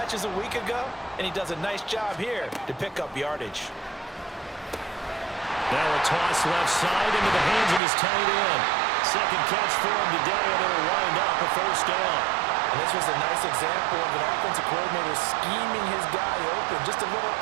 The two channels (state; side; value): drops out; left; at 7.8 s